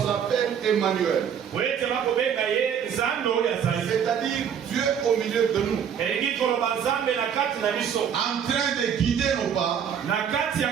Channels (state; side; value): quieter; left; 8.1 dB